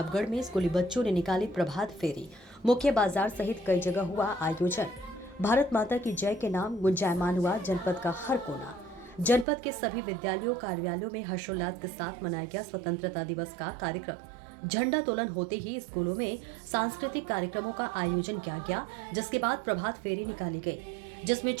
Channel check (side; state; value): left; drops out; at 9.5 s